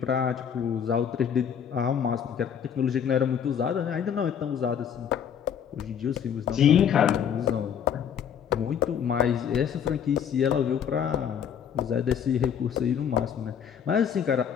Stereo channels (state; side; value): quieter; right; 8.2 dB